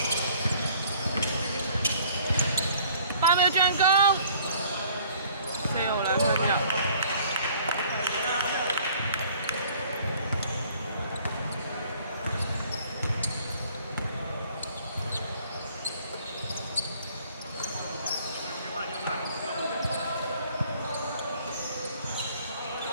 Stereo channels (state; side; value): inverted; both; correlation -0.56